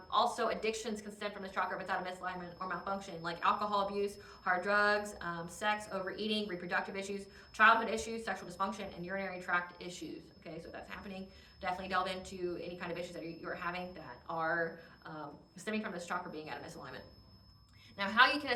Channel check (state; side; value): identical; both; correlation 1.00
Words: Also, addictions can stem from this chakra if it's out of misalignment or malfunction, like alcohol abuse, hard drugs, sex, overeating, reproductive issues, childhood issues, sexual dysfunction, and urinary tract issues. Okay, so if that's happening, definitely delve into any kind of issues that you're having that are stemming from this chakra being out of misalignment. Now, how you can